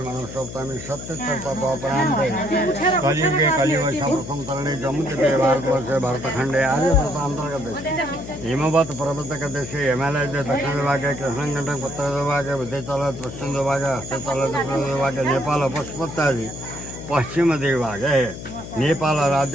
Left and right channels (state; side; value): noise; left; hum, 11 dB below the sound